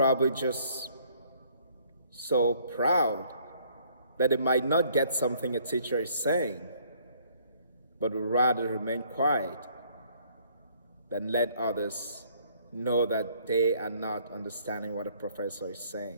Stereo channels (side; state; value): both; inverted; correlation -0.62